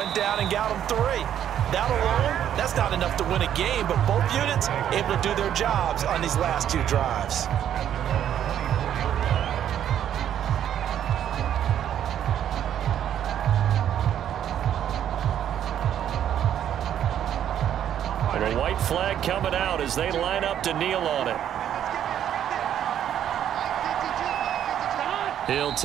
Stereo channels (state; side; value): quieter; left; 10.2 dB